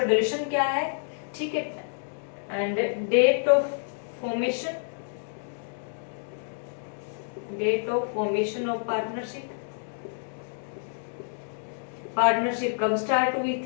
ड्यूरेशन क्या है। ठीक है, and date of formation, date of formation of partnership, partnership कब स्टार्ट हुई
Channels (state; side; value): silent; right; digital silence